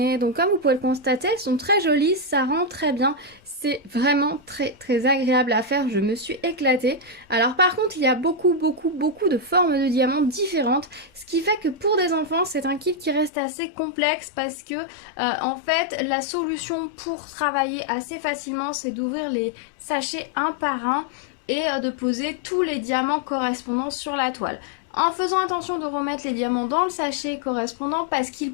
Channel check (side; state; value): right; drops out; at 13.3 s